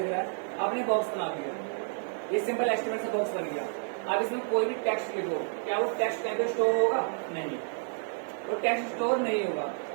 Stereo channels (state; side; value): silent; left; 58 dB below the other